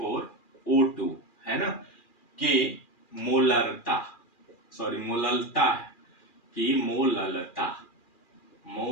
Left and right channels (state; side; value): late; right; 2.4 ms